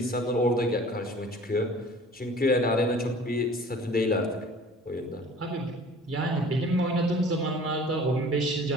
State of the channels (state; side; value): normal; both; correlation 0.47